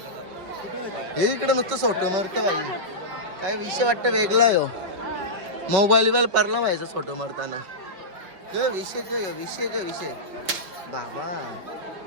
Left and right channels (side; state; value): left; late; 5.0 ms